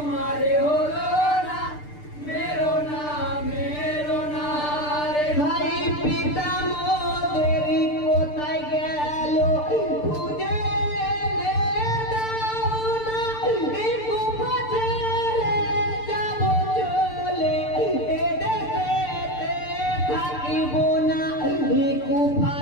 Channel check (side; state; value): right; late; 6.7 ms